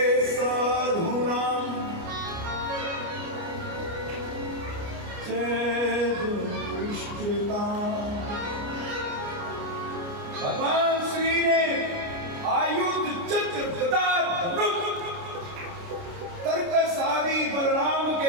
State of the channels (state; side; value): late; left; 29 ms